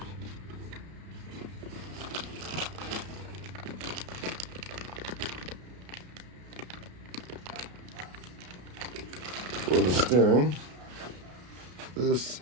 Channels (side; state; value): left; late; 33 ms